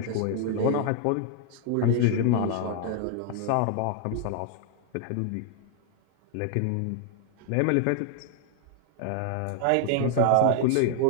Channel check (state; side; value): different; both; correlation 0.00